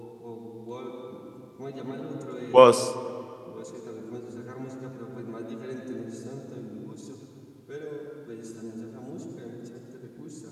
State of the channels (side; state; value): both; identical; correlation 1.00